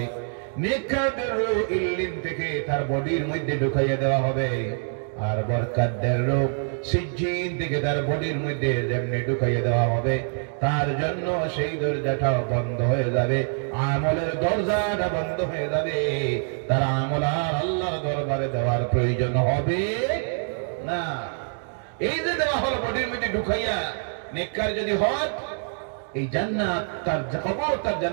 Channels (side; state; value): left; silent; 62 dB below the other